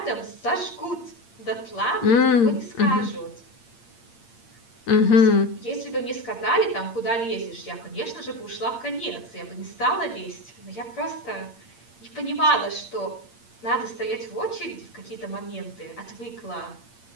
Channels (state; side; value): late; right; 8.7 ms